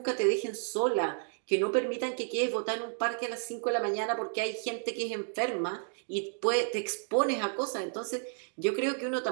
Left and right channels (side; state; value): left; silent; 57 dB below the other